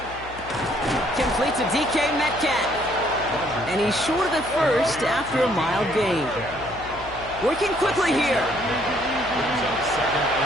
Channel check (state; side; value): noise; left; hum, 16 dB below the sound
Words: Complete to DK Metcalf. And he's short of the first after a mild gain. Working quickly here.